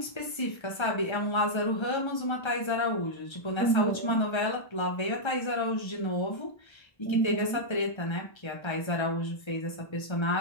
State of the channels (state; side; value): late; right; 1.3 ms